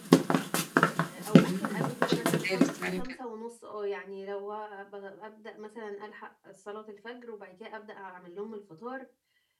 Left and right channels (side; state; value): both; identical; correlation 1.00